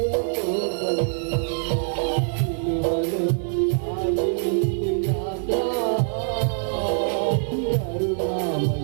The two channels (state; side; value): silent; left; digital silence